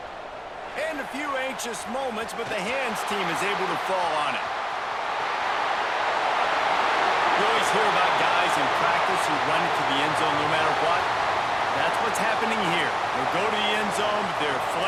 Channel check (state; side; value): identical; both; correlation 1.00